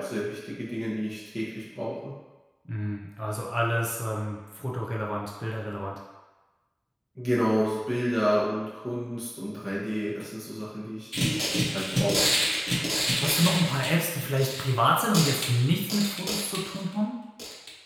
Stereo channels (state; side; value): identical; both; correlation 1.00